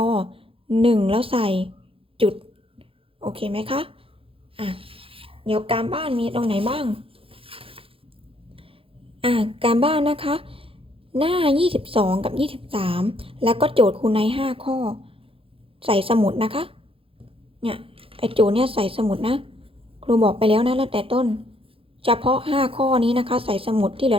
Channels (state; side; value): late; left; 0.27 ms